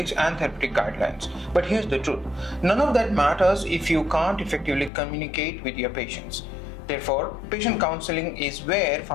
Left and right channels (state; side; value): drops out; right; at 4.9 s